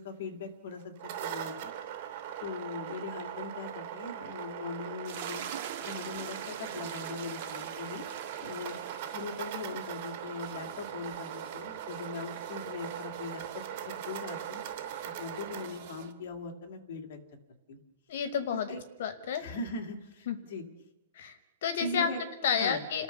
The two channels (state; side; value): inverted; both; correlation -0.37